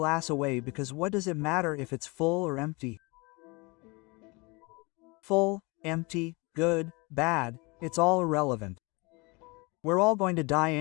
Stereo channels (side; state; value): right; quieter; 27.4 dB